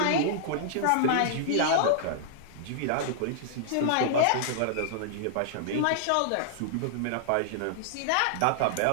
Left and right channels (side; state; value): both; different; correlation -0.01